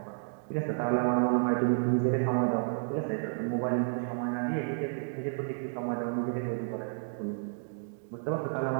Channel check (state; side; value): silent; left; digital silence